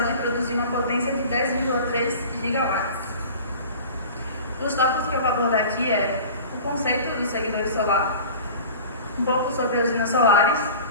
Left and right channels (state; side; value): inverted; both; correlation -0.39